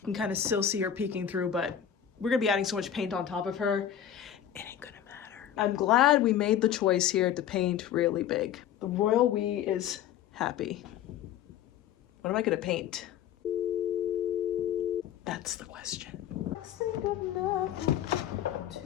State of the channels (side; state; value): right; quieter; 10.0 dB